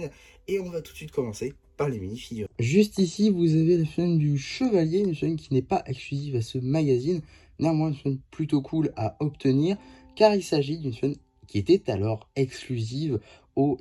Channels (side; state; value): both; identical; correlation 1.00